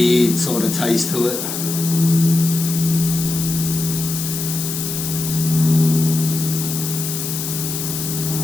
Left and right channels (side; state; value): left; noise; hiss, 5 dB below the sound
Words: sort of taste to it.